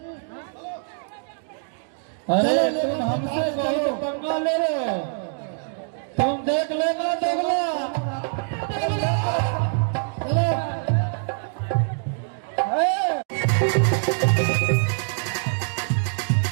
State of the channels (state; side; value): silent; left; digital silence